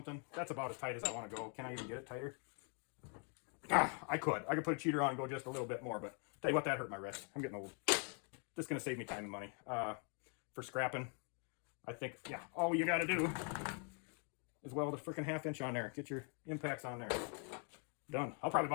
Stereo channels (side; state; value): right; quieter; 40.0 dB